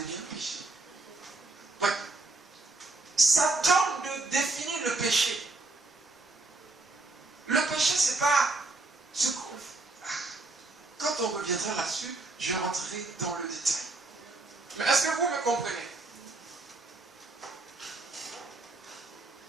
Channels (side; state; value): left; quieter; 3.2 dB